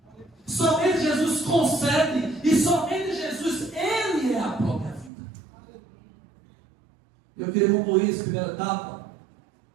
Somente Jesus concede, e somente Jesus, Ele é a própria vida. Eu queria concluir essa primeira etapa,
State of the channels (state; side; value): drops out; left; at 5.1 s